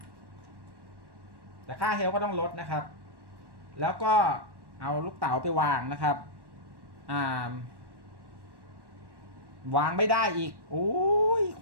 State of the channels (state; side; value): late; left; 1.1 ms